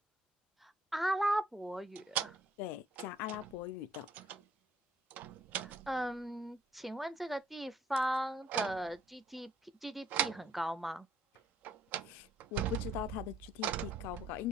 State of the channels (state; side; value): normal; both; correlation 0.62